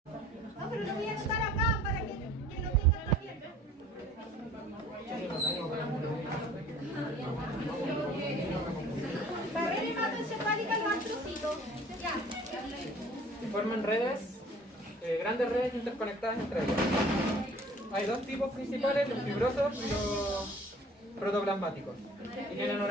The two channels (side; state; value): both; normal; correlation 0.51